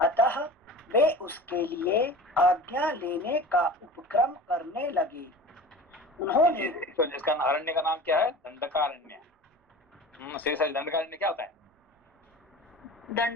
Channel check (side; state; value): both; normal; correlation 0.37